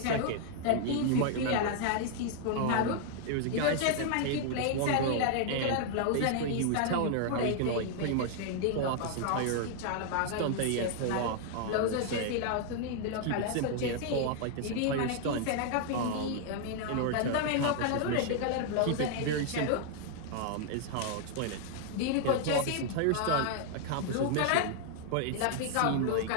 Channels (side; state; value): both; different; correlation 0.00